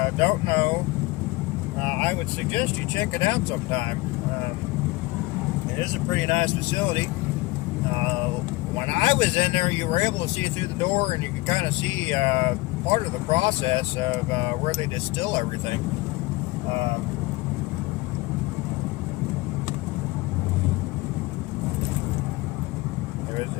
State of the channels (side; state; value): right; quieter; 21.3 dB